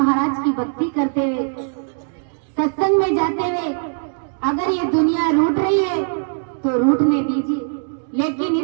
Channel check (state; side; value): silent; left; digital silence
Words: की भक्ति करते हुए, सत्संग में जाते हुए, अगर ये दुनिया रूठ रही है तो रूठने दीजिए, लेकिन